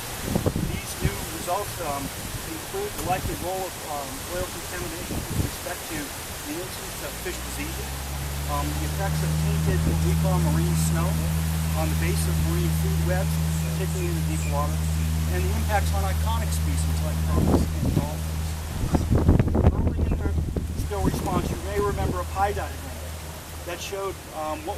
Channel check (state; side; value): identical; both; correlation 1.00